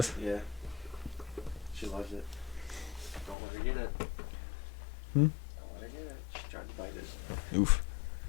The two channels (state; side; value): drops out; right; at 3.4 s